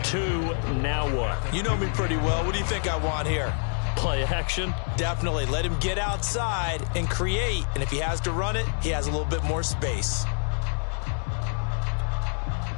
Now what? You know me pretty well. What do you think I want here? Play action? Definitely. Let him get outside and create. And if he has to run it, he has a little bit more space.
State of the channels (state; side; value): silent; right; digital silence